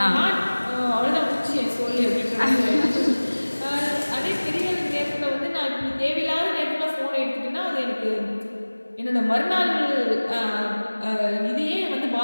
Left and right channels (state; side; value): inverted; both; correlation -1.00